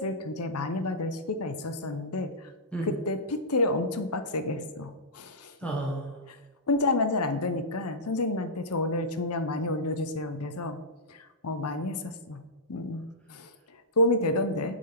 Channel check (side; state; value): both; normal; correlation -0.14